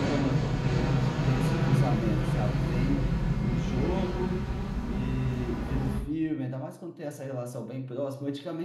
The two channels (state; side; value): identical; both; correlation 1.00